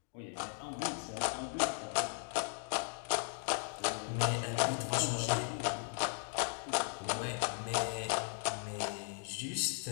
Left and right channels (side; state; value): right; silent; 53 dB below the other